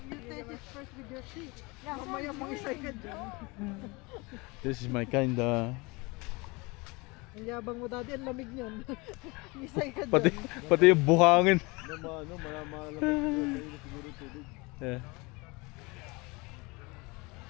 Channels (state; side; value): quieter; right; 26.0 dB